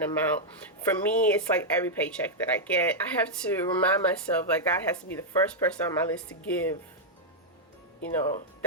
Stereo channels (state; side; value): normal; both; correlation -0.04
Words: amount. For me, it's like every paycheck that I get, I have to remind myself, like, God has to be the first person on my list to give,